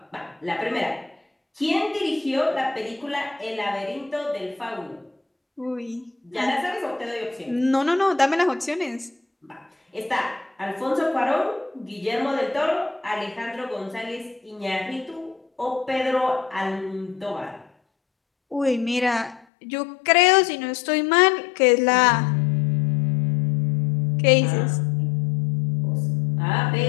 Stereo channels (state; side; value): drops out; right; at 19.5 s